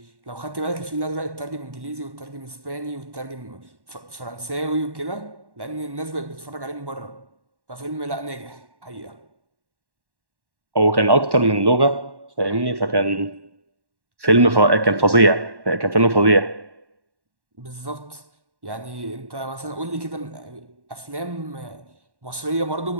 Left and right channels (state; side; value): late; left; 1.1 ms